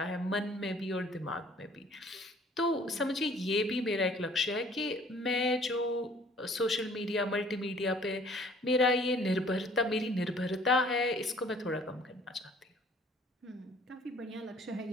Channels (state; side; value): normal; both; correlation 0.55